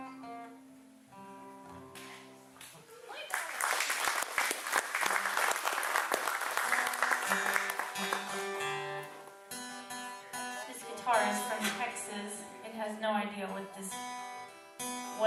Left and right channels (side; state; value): both; identical; correlation 1.00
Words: This guitar is from Texas. It has no idea what this